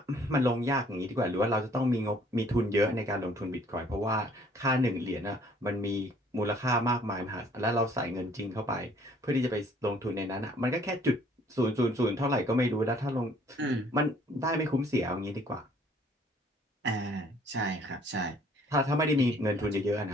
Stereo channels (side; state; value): both; normal; correlation 0.59